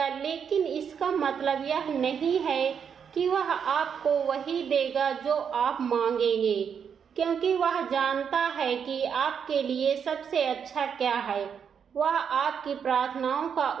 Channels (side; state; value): left; quieter; 7.3 dB